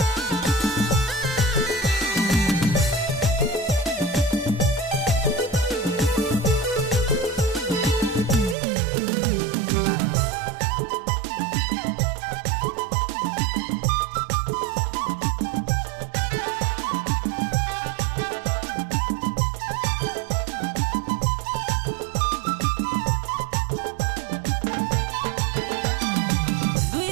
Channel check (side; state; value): left; drops out; at 8.6 s